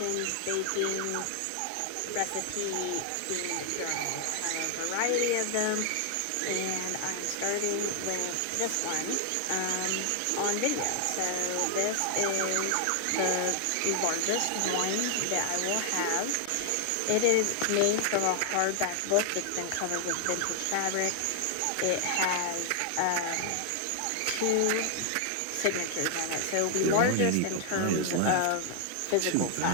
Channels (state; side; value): different; both; correlation 0.00